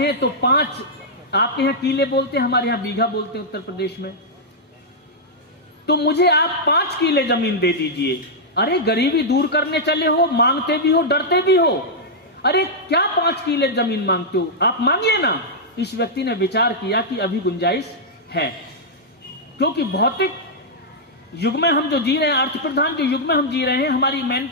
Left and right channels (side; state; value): both; normal; correlation -0.07